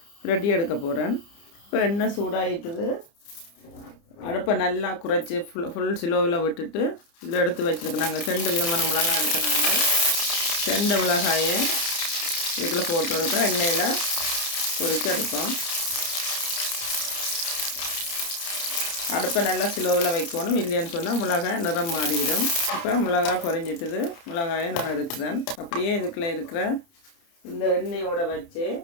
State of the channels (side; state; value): right; late; 29 ms